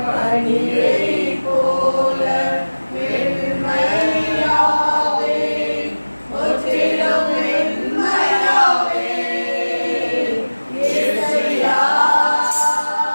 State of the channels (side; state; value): both; inverted; correlation -1.00